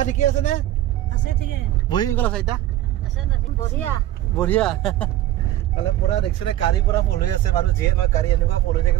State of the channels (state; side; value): quieter; left; 13.7 dB